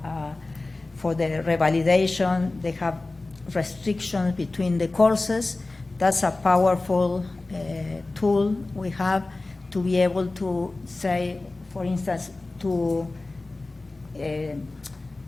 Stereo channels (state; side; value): quieter; right; 3.2 dB